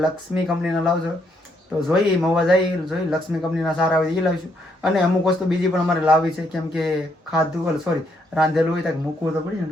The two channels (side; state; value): both; normal; correlation 0.74